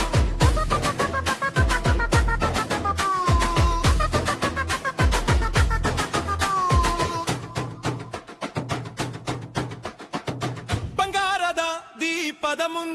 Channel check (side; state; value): both; identical; correlation 1.00